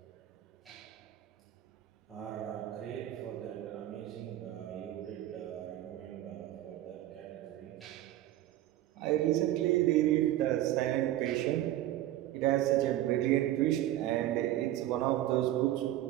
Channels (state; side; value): quieter; left; 14.0 dB